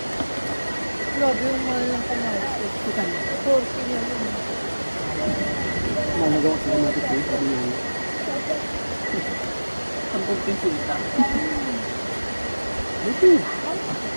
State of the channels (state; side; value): inverted; both; correlation -1.00